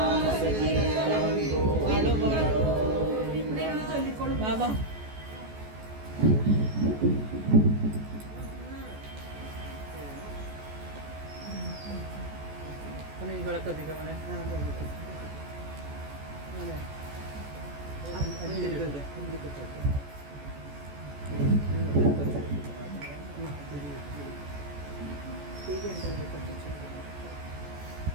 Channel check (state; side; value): late; left; 14 ms